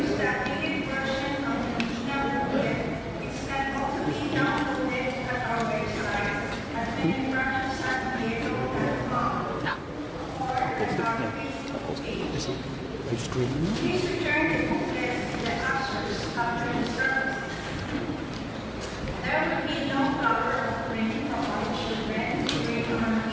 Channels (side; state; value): both; identical; correlation 1.00